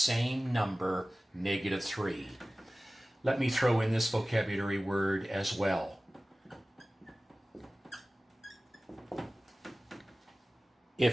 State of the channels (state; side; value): normal; both; correlation 0.97